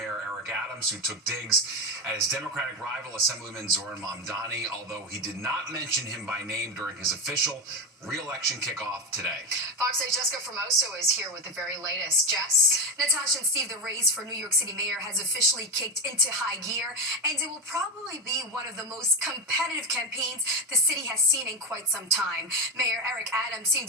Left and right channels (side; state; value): both; normal; correlation 0.14